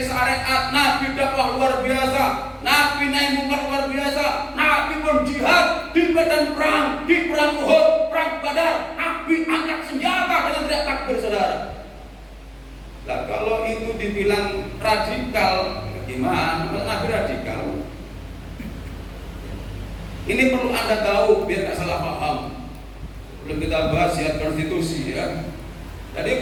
syariat, Nabi dakwah luar biasa, Nabi nahi mungkar luar biasa, Nabi pun jihad di medan perang, di perang Uhud, perang Badar, Nabi angkat senjata dengan teriak takbir saudara. Nah kalau itu dibilang radikal, gimana? Nabi radikal. Ini perlu Anda tahu biar nggak salah paham. Belum kita bahas ya konstitusi ya. Jadi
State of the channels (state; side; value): identical; both; correlation 1.00